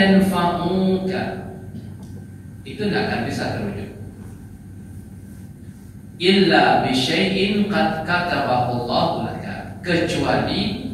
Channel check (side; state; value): both; identical; correlation 1.00